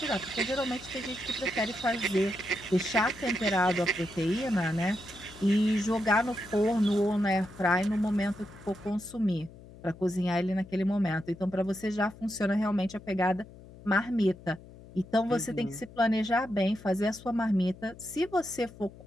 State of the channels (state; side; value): noise; left; hum, 19 dB below the sound